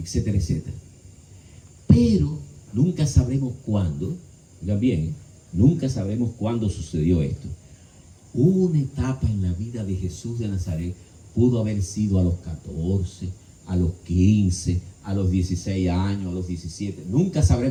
etcétera. Pero nunca sabremos cuándo, oigan bien, nunca sabremos cuándo sucedió esto. Una etapa en la vida de Jesús de Nazaret pudo haber sido a los 14, a los 15, a los 16 años, a los 17. Nunca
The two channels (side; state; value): both; identical; correlation 1.00